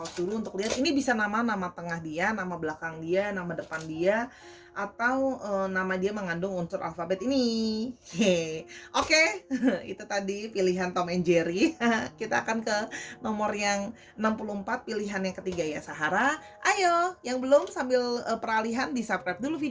dulu untuk lihat. Ini bisa nama tengah dia, nama belakang dia, nama depan dia, atau nama dia mengandung unsur alfabet ini. Oke, itu tadi pilihan Tom and Jerry. Kita akan ke nomor yang 64, pilihan yang ketiga ya, Sahara. Ayo, yang belum sambil peralihan di-subscribe dulu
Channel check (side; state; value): both; identical; correlation 1.00